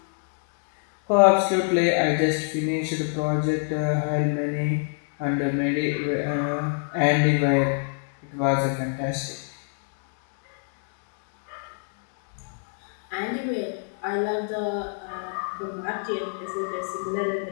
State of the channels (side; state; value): right; silent; 61 dB below the other